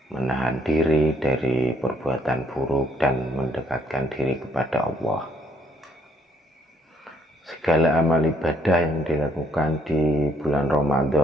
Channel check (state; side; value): normal; both; correlation 0.69